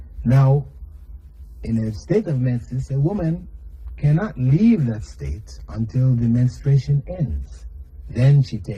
Now, in a state of menses, a woman cannot leave that state until the menstruation ends. Then she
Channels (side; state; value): both; identical; correlation 1.00